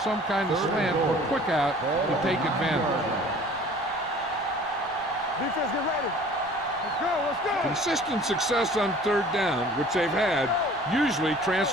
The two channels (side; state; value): left; noise; rumble, 24 dB below the sound